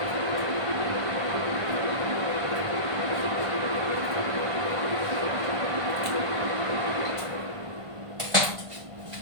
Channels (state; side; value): late; left; 1.5 ms